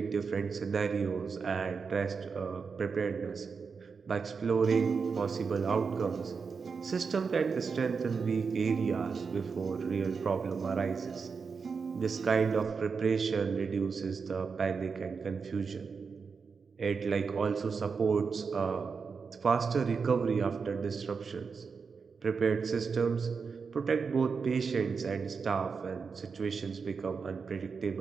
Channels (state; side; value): quieter; left; 5.4 dB